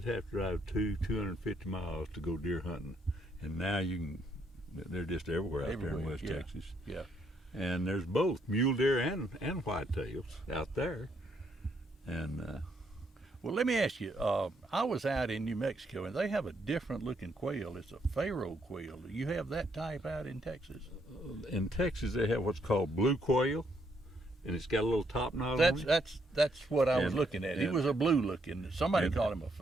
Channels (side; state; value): both; normal; correlation 0.73